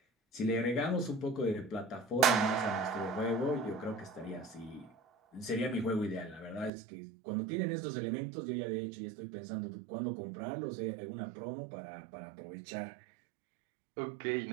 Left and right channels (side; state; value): left; drops out; at 6.7 s